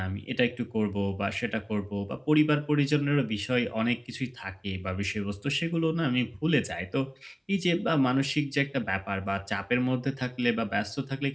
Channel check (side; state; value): both; identical; correlation 1.00